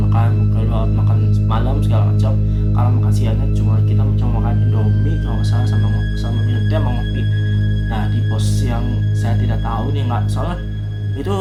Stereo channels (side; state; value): both; identical; correlation 1.00